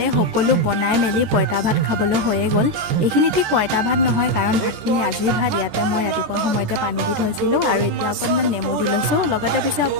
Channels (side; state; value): left; late; 14 ms